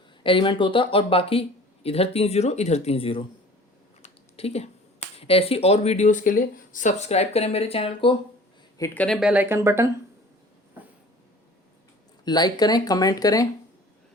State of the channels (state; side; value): normal; both; correlation 0.46